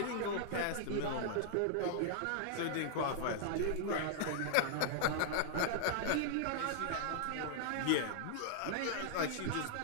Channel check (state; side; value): different; both; correlation -0.01